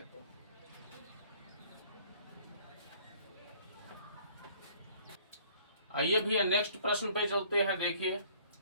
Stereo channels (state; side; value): inverted; both; correlation -0.56